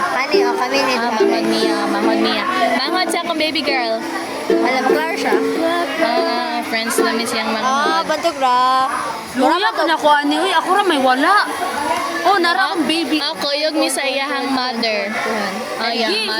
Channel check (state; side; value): identical; both; correlation 1.00